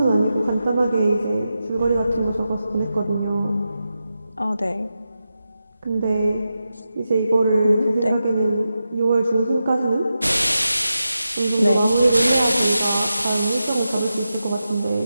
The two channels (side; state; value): both; inverted; correlation -0.90